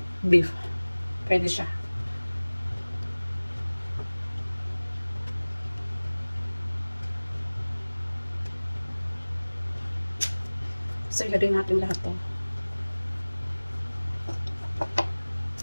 beef. Pwede siya. So, ilagay natin lahat to.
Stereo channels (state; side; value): inverted; both; correlation -1.00